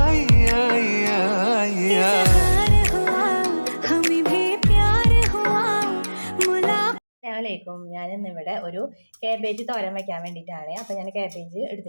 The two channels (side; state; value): both; inverted; correlation -1.00